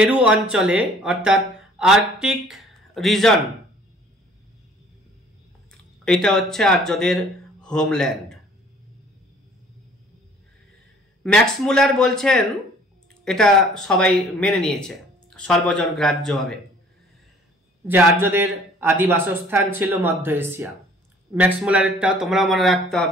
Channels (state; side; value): normal; both; correlation 0.55